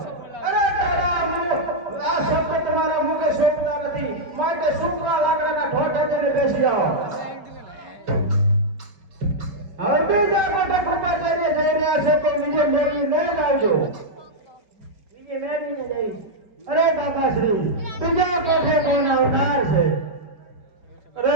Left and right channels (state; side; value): late; left; 4.5 ms